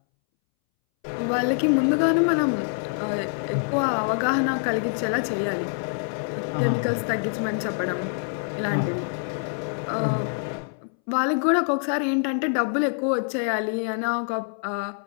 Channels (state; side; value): silent; right; 62 dB below the other